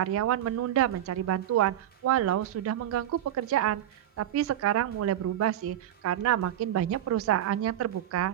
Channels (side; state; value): left; quieter; 11.6 dB